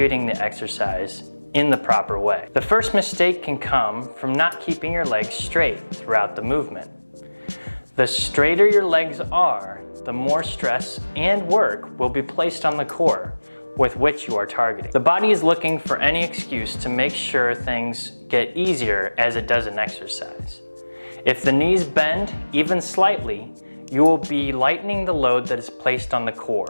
the exercise in the proper way. The first mistake can come from not keeping your legs straight throughout the movement. The straighter your legs are, the more stress and work will be placed on the core with which you are targeting. The body is looking for any excuse to make sure things get easier as it does in exercise. If the knees bend even slightly, you will be lightening the load that is placed on the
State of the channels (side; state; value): both; inverted; correlation -1.00